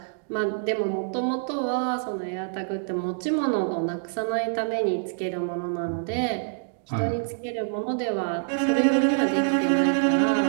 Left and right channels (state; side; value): silent; left; digital silence